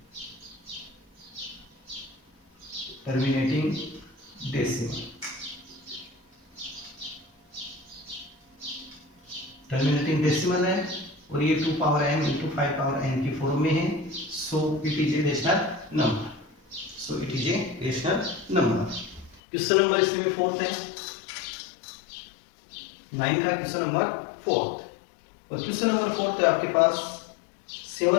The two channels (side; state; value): right; drops out; at 19.4 s